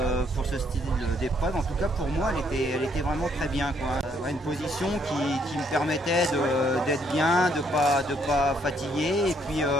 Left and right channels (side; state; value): both; normal; correlation 0.69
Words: style d'épreuve. En tout cas pour moi elle était vraiment très bien, quoi. Une position qui me permettait d'être bien, de pas fatiguer, et